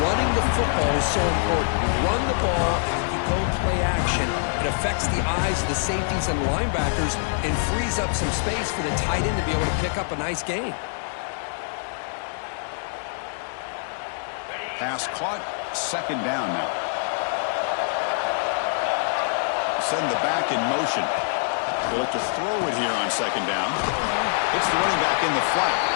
running the football is so important. You run the ball and you go play action. It affects the eyes of the safeties and linebackers and frees up some space for the tight end to be able to pick up a nice gain. Pass caught, 2nd down now. Send the back in motion. They'll look to throw it here on 2nd down. It's the running back in the flat.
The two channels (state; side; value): silent; right; digital silence